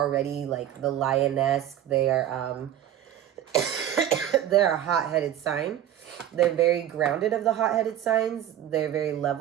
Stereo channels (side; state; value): left; quieter; 11.3 dB